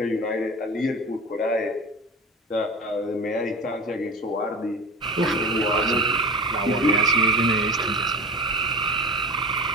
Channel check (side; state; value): both; normal; correlation 0.30